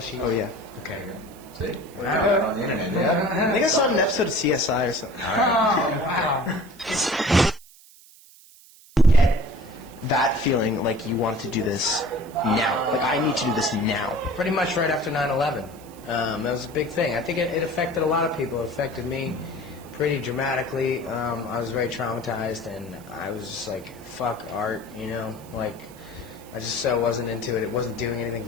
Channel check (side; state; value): right; noise; hiss, 23 dB below the sound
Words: Oh yeah. Okay. See? Wow. On the internet, yeah. I think I saw an episode of CSI or something. Oh wow. Get that feeling like you wanted to do this now. Like, I need to do this now. Pretty much right after 9/11. That was a big thing. I think it affected a lot of people. It affected me pretty dramatically. I was very traumatized, and I was just like, fuck art, you know? Like, I just so wasn't into it. It wasn't doing anything